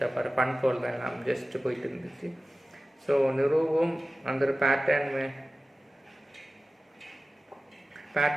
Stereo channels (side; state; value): both; normal; correlation 0.96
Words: பாரு ஃபன் போல் தான் எல்லாம் ஜஸ்ட்டு போயிட்டு இருந்துச்சு. ஸோ நிரூபம் அந்த ஒரு